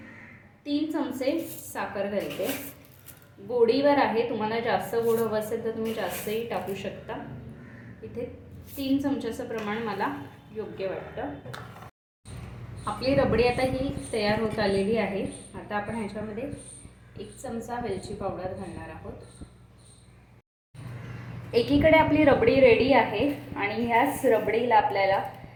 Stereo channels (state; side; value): identical; both; correlation 1.00